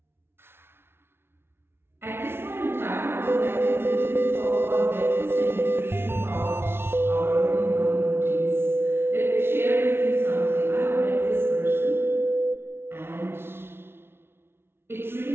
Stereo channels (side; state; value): left; late; 0.12 ms